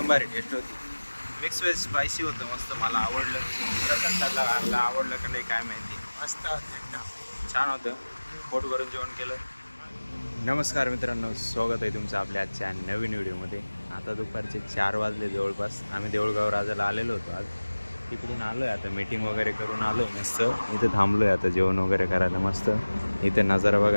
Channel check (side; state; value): both; inverted; correlation -1.00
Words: भारी टेस्ट होती. मिक्स व्हेज स्पायसी होतं मस्त, मला आवडलं. कसं खाल्लं आवडलं का नाही काय माहिती. मस्त होतं एकदम छान होतं. पोट भरून जेवण केलं. नमस्कार मित्रांनो, स्वागत आहे तुमचं आपल्या आजच्या नवीन व्हिडिओमध्ये. आता दुपारचे 4 वाजले जवळपास. आम्ही देऊळगाव राजाला आलेलो होतो. आज तिकडून आलो आहे. आता मीटिंग वगैरे करून आलो आहे. मस्त इथं थांबलो आहे आता जेवण वगैरे करायला. मस्त इथं नजारा